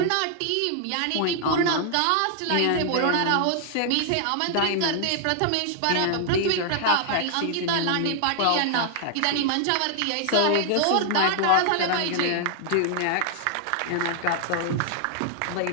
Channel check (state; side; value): different; both; correlation 0.00